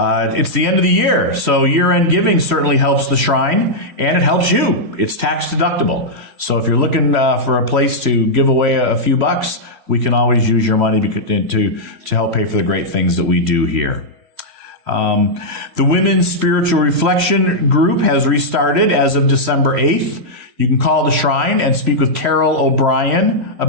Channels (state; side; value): late; left; 3.0 ms